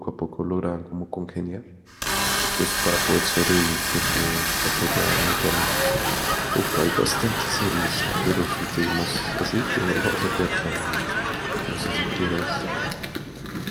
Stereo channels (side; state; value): both; identical; correlation 1.00